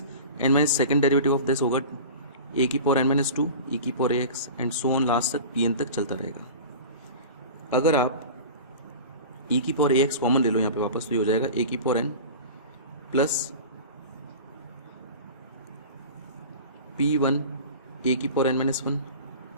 N minus second derivative of this होगा ए की पावर एन माइनस टू ई की power A X, and so on last तक पी एन तक चलता रहेगा। अगर आप ई की पावर ए एक्स कॉमन ले लो यहाँ पे वापस, तो ये हो जाएगा ए की power N plus P1 A की power N minus one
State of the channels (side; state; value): both; inverted; correlation -0.36